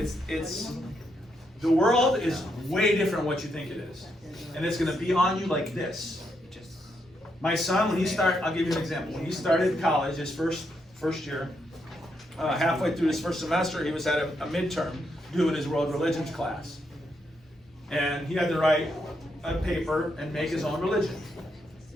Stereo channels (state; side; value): normal; both; correlation 0.79